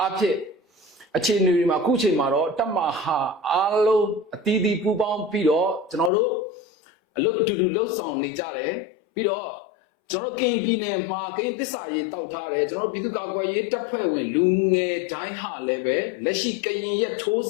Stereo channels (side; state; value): right; drops out; at 6.1 s